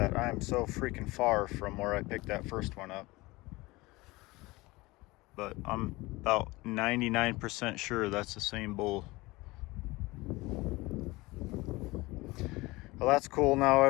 I am so freaking far from where I picked that first one up. But I'm about 99% sure that's the same bull. Well, that's cool. Now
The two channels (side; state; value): right; quieter; 21.5 dB